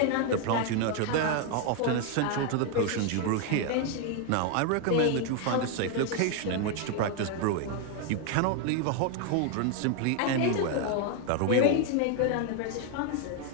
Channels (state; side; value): different; both; correlation 0.01